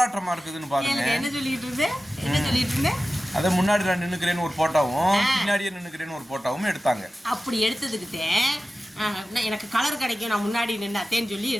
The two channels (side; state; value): both; normal; correlation 0.95